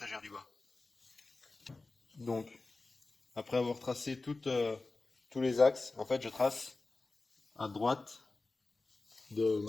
du bas. Donc, après avoir tracé tous les axes, en fait, je trace à droite de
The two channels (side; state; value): right; quieter; 3.5 dB